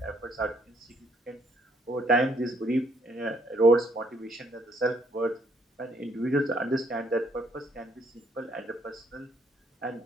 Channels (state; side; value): normal; both; correlation 0.67